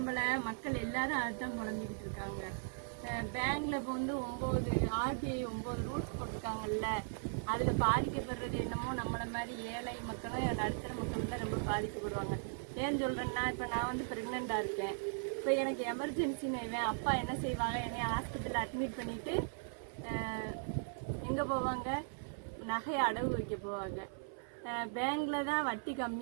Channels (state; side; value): silent; left; 52 dB below the other